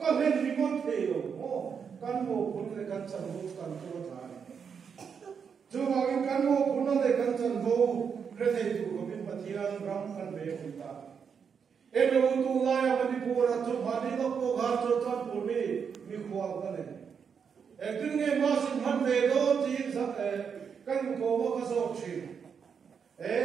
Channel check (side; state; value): left; quieter; 6.7 dB